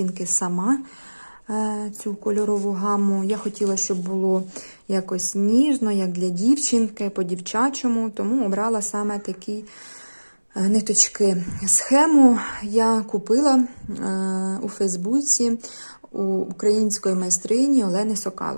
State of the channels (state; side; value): inverted; both; correlation -1.00